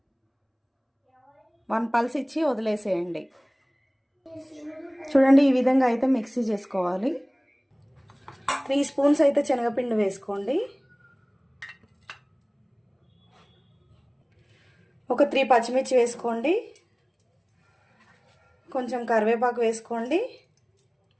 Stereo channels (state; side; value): identical; both; correlation 1.00